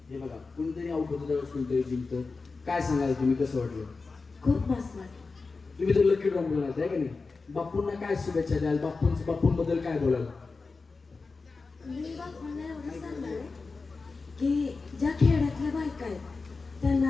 हे बघा कुणीतरी आउट होतं त्यावेळेस कुणीतरी जिंकतं. काय सांगाल तुम्ही, कसं वाटलं? खूप मस्त वाटलं. तुम्ही तर लकी ड्रॉ बोलाल आहे का नाही? बापूंना काय शुभेच्छा द्याल? बापूंबद्दल काय बोलाल? मी बापूंना एवढं सांगणार आहे की ज्या खेड्यातल्या बायका आहेत त्यांना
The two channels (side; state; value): right; quieter; 4.1 dB